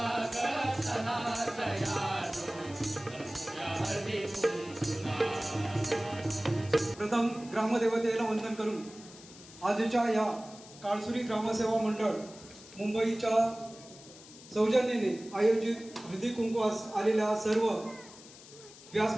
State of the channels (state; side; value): noise; left; hiss, 19 dB below the sound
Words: ग चला सयानो, जमूया हळदी कुंकूला. प्रथम ग्रामदेवतेला वंदन करून आजच्या या काळसुरी ग्रामसेवा मंडळ मुंबईच्या सौजन्याने आयोजित हळदी कुंकवास आलेल्या सर्व